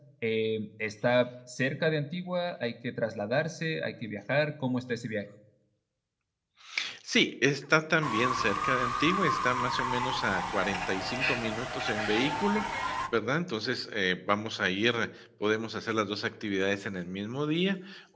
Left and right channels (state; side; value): identical; both; correlation 1.00